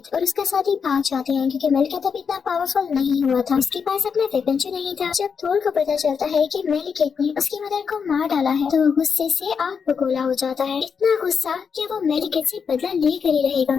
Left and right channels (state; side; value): quieter; right; 6.2 dB